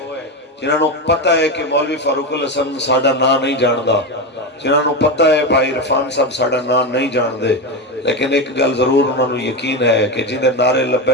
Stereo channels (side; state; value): both; normal; correlation 0.15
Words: جنہاں نو پتہ ہے کہ مولوی فاروق الحسن ساڈا نام نہیں جاندا، جنہاں نو پتہ ہے بھائی عرفان صاحب ساڈا نام نہیں جان دے، لیکن ایک گل ضرور انہاں نو یقین ہے کہ جندے نعرے